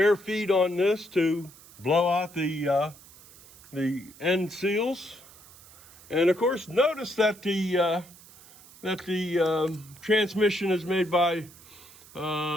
feed on this to blow out the end seals, and of course, notice that the transmission is made by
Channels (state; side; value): noise; right; hiss, 22 dB below the sound